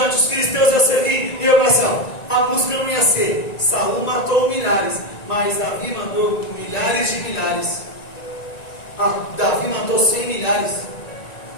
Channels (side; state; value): right; late; 1.9 ms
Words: os filisteus iam servir, e eu pensava, a música não ia ser, Saul matou milhares, mas Davi mandou milhares de milhares. Davi matou 100 milhares.